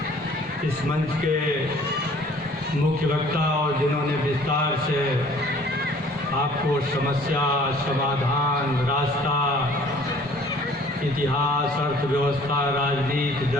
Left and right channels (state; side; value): normal; both; correlation 0.53